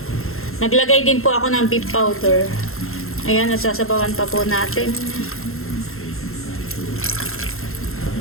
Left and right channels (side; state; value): right; late; 0.62 ms